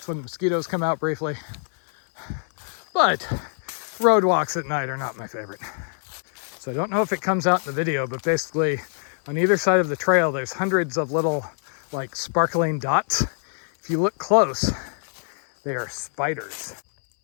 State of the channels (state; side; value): silent; right; 62 dB below the other